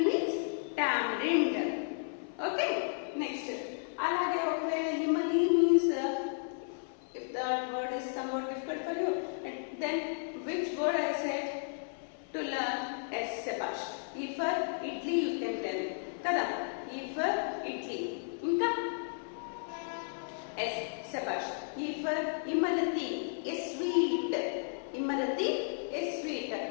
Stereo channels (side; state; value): right; silent; 55 dB below the other